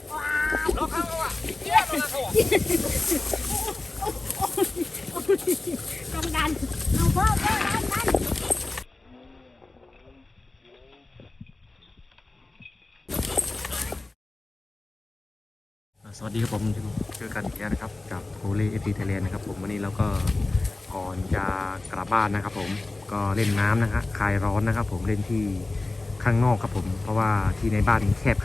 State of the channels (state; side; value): quieter; right; 3.1 dB